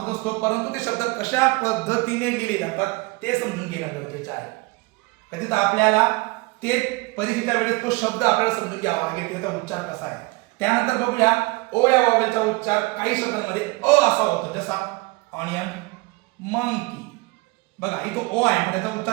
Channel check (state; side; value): quieter; left; 24.8 dB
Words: असतो. परंतु ते शब्द कशा पद्धतीने लिहिले जातात ते समजून घेणं गरजेचं आहे. कधीच आपल्याला ते परीक्षेच्या वेळेस तो शब्द आपल्याला समजून घ्यावा लागेल त्याचा उच्चार कसा आहे. त्यानंतर बघूया ओ या वावेलचा उच्चार काही शब्दांमध्ये अ असा होतो. जसा ऑनियन, मंकी. बघा इथं ओ आहे पण त्याचा